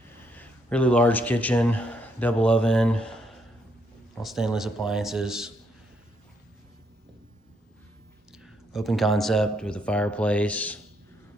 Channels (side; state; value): both; normal; correlation 0.74